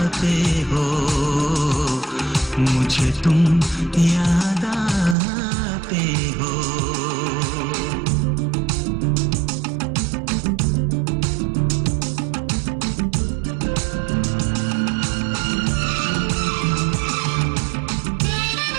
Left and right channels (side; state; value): left; drops out; at 5.2 s